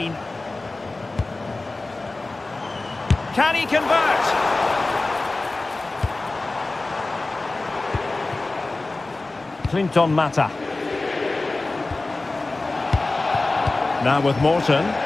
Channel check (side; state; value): right; quieter; 3.2 dB